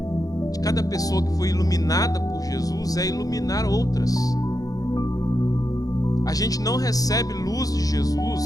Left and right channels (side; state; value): right; late; 0.17 ms